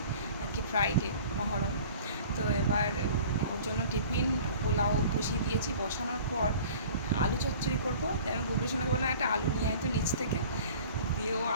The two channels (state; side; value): inverted; both; correlation -0.45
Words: আজকে ফ্রাইডে মহরম। তো এবার ওর জন্য টিফিন পোলাও বসিয়ে দিয়েছি। বসানোর পর আলু চচ্চড়ি করবো। আমি গুড্ডুর সঙ্গে বললাম একটা আলু নিয়ে আয় তো নিচ থেকে। দিয়ে ও